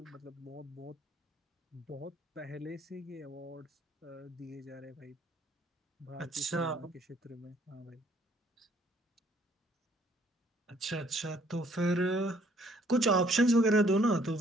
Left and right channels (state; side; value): normal; both; correlation 0.63